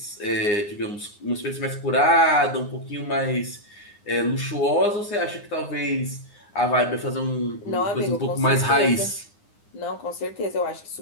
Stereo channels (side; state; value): right; late; 9.7 ms